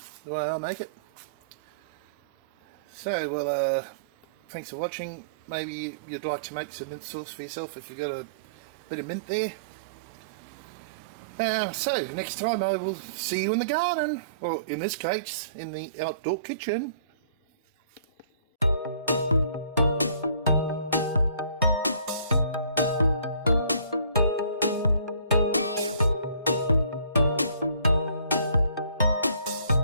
the way I make it. So, well, thanks for watching. Maybe you'd like to make some mint sauce for yourself if you've got a bit of mint there. So next time I will see you in the garden, or in this case in the outdoor kitchen.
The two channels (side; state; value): both; inverted; correlation -0.53